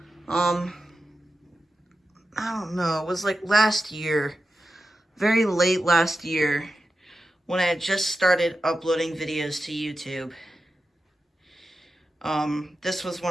um, I don't know, it was like last year, very late last year, when I had just started uploading videos to YouTube. This was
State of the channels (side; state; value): both; normal; correlation 0.92